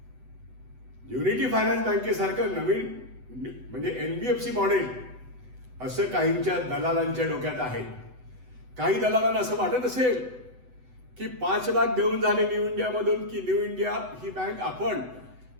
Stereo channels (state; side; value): late; left; 8.0 ms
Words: युनिटी फायनान्स बँकेसारखं नवीन म्हणजे NBFC मॉडेल असं काहींच्या दलालांच्या डोक्यात आहे. काही दलालांना असं वाटत असेल की 5 लाख देऊन झाले न्यू इंडियामधून की न्यू इंडिया ही बँक आपण